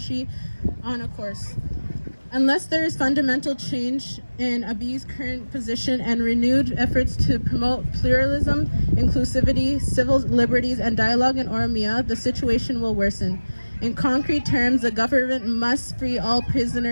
on a course. Unless there is fundamental change in Abiy's current position and renewed efforts to promote pluralism, inclusivity, civil liberties, and dialogue in Oromia, the situation will worsen. In concrete terms, the government must free all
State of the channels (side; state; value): both; inverted; correlation -1.00